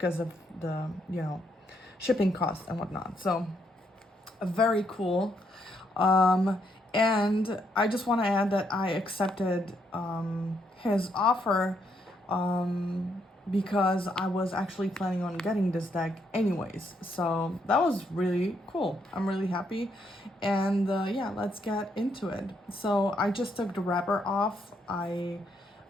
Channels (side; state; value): both; normal; correlation 0.75